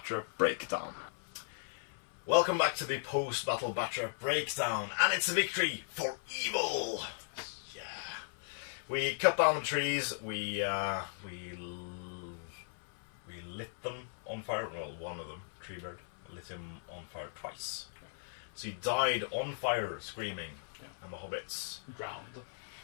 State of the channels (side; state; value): right; silent; 53 dB below the other